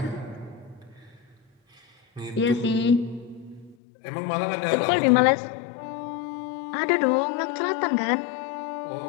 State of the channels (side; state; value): right; drops out; at 3.8 s